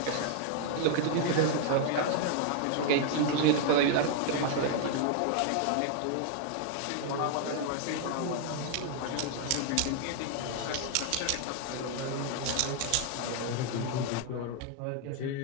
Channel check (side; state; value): both; different; correlation 0.00